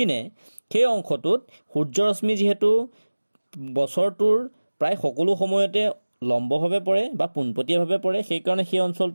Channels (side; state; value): both; inverted; correlation -1.00